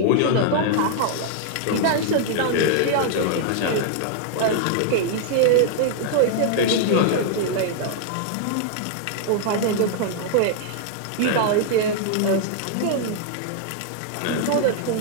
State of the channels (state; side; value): different; both; correlation -0.01